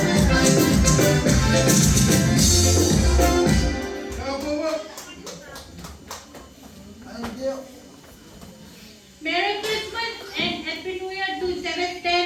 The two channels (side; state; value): both; identical; correlation 1.00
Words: Merry Christmas and Happy New Year to